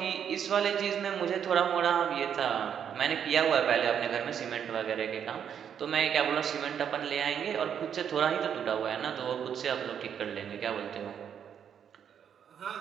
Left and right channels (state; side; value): quieter; left; 8.3 dB